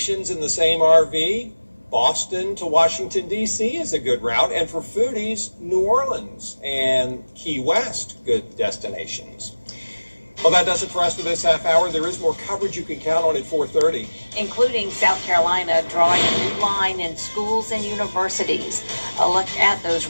in the same RV. Boston to Washington, D.C. is a good route. And for foodies, New Orleans and Key West, good destinations. Well, that does it for us for this half hour. There is more coverage you can count on at 4:30. Including South Carolina drawing a new line in schools and universities. A look at those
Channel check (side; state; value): both; inverted; correlation -1.00